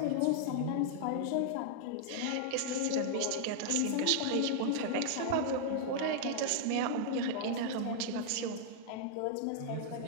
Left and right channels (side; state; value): both; different; correlation -0.01